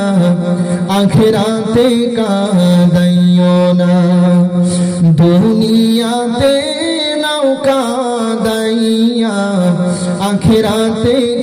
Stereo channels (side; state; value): both; identical; correlation 1.00